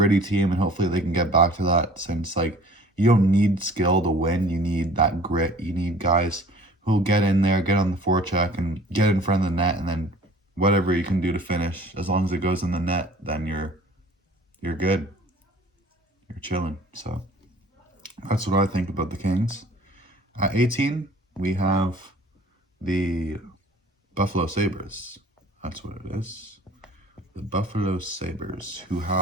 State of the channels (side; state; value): both; normal; correlation 0.49